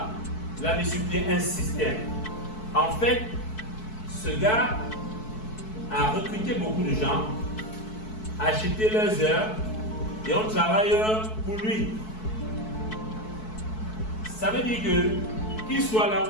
Il a mis sur pied un système. En fait, ce gars a recruté beaucoup de gens, acheté leurs heures et on travaille pour lui. Ça veut dire que qu'il soit là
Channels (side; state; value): right; late; 4.6 ms